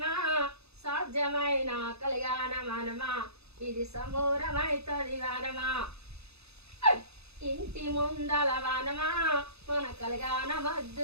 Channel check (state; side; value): late; left; 0.79 ms